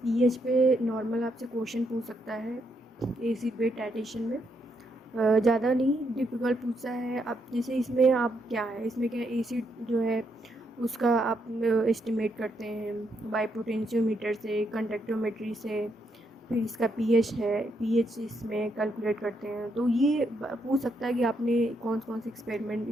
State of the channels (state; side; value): normal; both; correlation 0.78